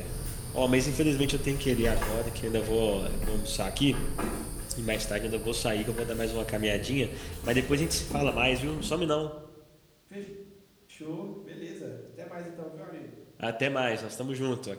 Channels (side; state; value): both; identical; correlation 1.00